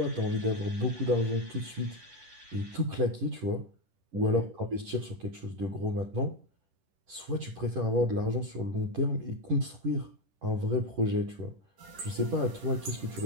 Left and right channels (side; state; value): left; late; 10 ms